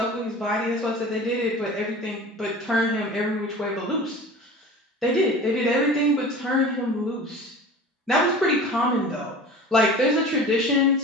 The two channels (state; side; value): normal; both; correlation 0.38